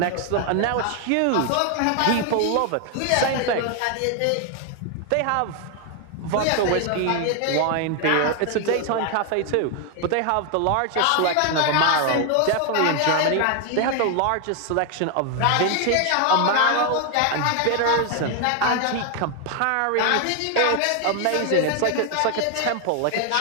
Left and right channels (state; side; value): different; both; correlation 0.01